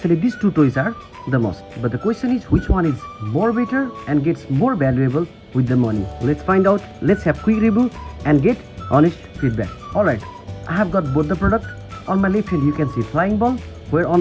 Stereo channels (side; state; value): both; identical; correlation 1.00